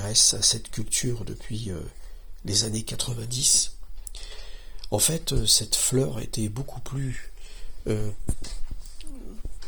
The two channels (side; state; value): both; identical; correlation 1.00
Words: à cette culture depuis les années 90. En fait, cette fleur était beaucoup plus